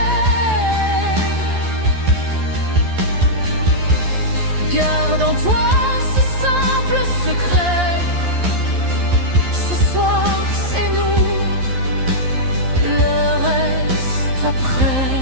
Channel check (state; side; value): late; left; 11 ms